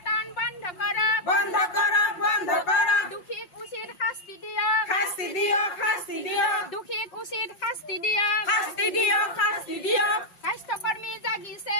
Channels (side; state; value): right; late; 5.6 ms